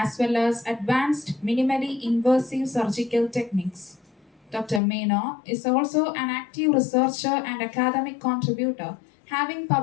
well as advanced minimally invasive surgical techniques. Dr. Menon is also an active researcher and academic contributor, having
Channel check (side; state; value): right; drops out; at 4.8 s